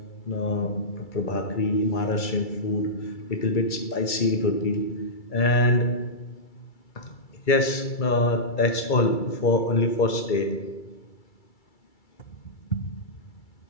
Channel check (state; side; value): late; right; 2.3 ms